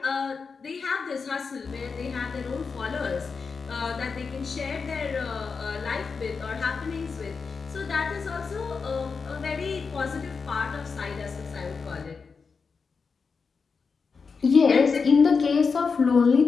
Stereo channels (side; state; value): right; quieter; 5.1 dB